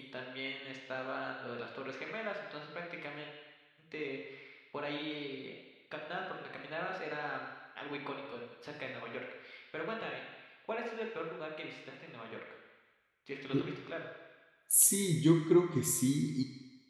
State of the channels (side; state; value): both; identical; correlation 1.00